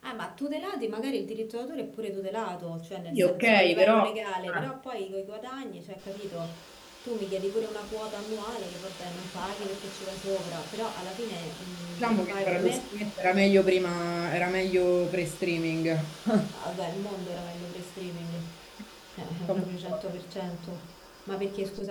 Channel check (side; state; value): both; identical; correlation 1.00